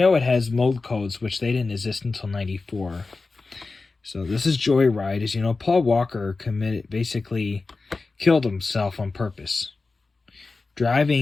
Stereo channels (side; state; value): right; quieter; 3.9 dB